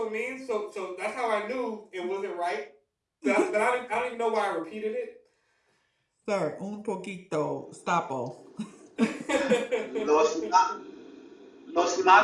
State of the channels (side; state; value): both; identical; correlation 1.00